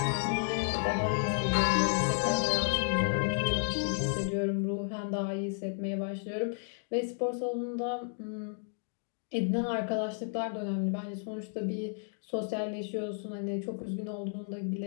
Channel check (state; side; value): silent; right; 56 dB below the other